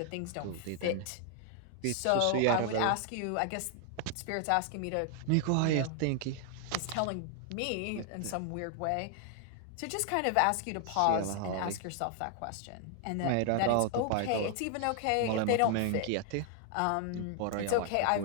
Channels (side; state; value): both; different; correlation 0.00